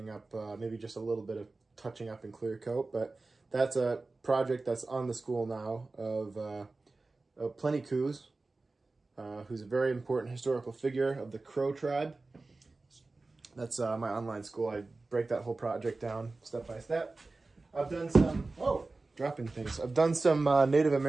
up, maybe just a little bit of touching up and clear coat, but that's a project that's on the school now of Plenty Coups, who's a very important historical figure of the Crow tribe. That's my online school. I break that whole project down step by step. I've done some, dropping things. I've done some Native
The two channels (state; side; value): quieter; left; 3.5 dB